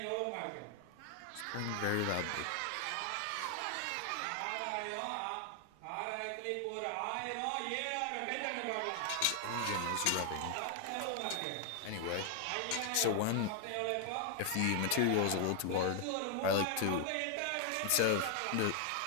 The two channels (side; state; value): both; different; correlation 0.00